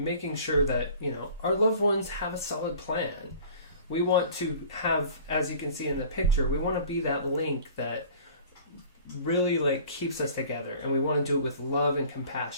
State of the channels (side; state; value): both; inverted; correlation -0.46